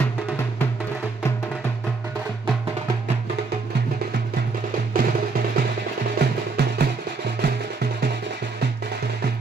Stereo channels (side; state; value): left; quieter; 4.2 dB